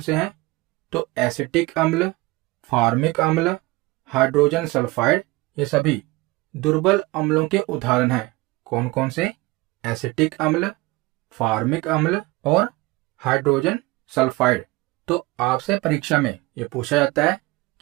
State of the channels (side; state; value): left; quieter; 22.0 dB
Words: हैं? तो एसिटिक अम्ल, फार्मिक अम्ल, हाइड्रोजन सल्फाइड, ये सभी दुर्बल अम्लों के उदाहरण हैं। कौन कौन से? एसिटिक अम्ल, फार्मिक अम्ल और हाइड्रोजन सल्फाइड। तो आपसे परीक्षा में ये पूछा जाता है